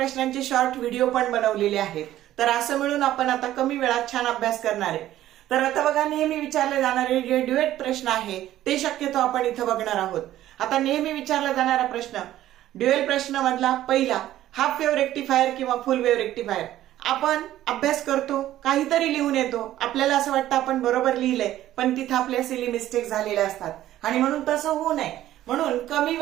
शॉर्ट व्हिडिओ पण बनवलेले आहेत। तर असं मिळून आपण आता कमी वेळात छान अभ्यास करणार आहे। तर आता बघा, नेहमी विचारले जाणारे जे ड्युएट प्रश्न आहे ते शक्यतो आपण इथं बघणार आहोत। आता नेहमी विचारला जाणारा प्रश्न, ड्युएल प्रश्न मधला पहिला, हाफ वेव्ह रेक्टिफायर किंवा फुल वेव्ह रेक्टिफायर। आपण अभ्यास करतो, काहीतरी लिहून येतो, आपल्याला असं वाटतं आपण बरोबर लिहिलंय, पण तिथं आपल्या सिली मिस्टेक झालेल्या असतात आणि म्हणून तसं होऊ नये म्हणून कमी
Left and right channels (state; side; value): quieter; left; 13.5 dB